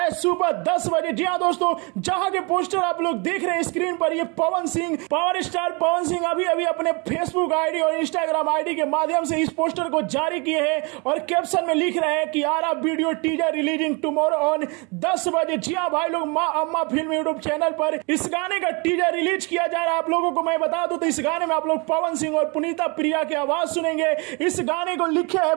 सुबह 10 बजे। जी हाँ दोस्तों, जहां के पोस्टर आप लोग देख रहे हैं स्क्रीन पर, ये पवन सिंह, पावर स्टार पवन सिंह अभी अभी अपने फेसबुक आईडी और इंस्टाग्राम आईडी के माध्यम से इस पोस्टर को जारी किए हैं और कैप्शन में लिख रहे हैं कि आ रहा video teaser releasing tomorrow on 10 बजे। जी हाँ भाई लोग, माँ अम्मा फिल्म यूट्यूब चैनल पर इस गाने का टीजर रिलीज किया जा रहा है। आप लोगों को मैं बता दूं तो इस गाने में आप लोग पवन सिंह और पुनीता प्रिया की आवाज सुनेंगे। इस गाने को लिखे है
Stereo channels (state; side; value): quieter; left; 30.4 dB